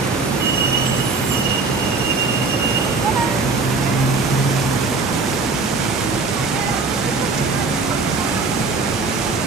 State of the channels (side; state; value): left; quieter; 4.0 dB